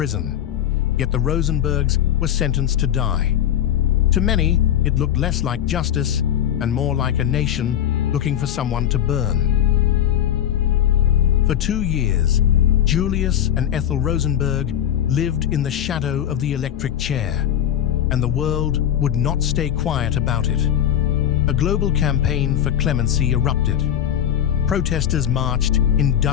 Yet the Rosenbergs were sentenced to die. To many, it looked less like justice and more like a nation looking for someone to burn. For 2 years, Julius and Ethel Rosenberg lived in the shadow of the electric chair, and the world would not stay quiet about it. A global campaign for clemency erupted. Protesters marched in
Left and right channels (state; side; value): quieter; right; 10.5 dB